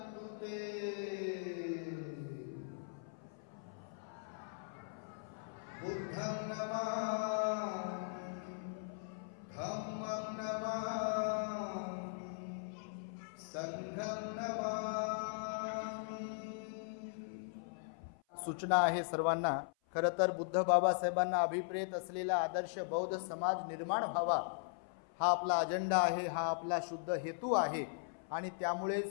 ते. बुद्धं नमामि, धम्मं नमामि, संघं नमामि. सूचना आहे सर्वांना, खरं तर बुद्ध बाबासाहेबांना अभिप्रेत असलेला आदर्श बौद्ध समाज निर्माण व्हावा हा आपला अजेंडा आहे, हा आपला शुद्ध हेतू आहे आणि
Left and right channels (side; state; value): right; silent; 52 dB below the other